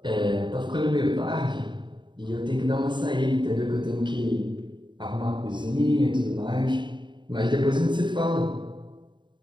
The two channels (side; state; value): left; late; 0.23 ms